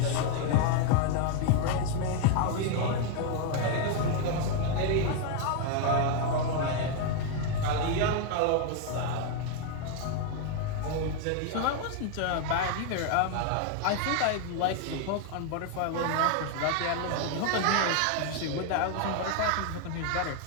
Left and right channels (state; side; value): different; both; correlation 0.01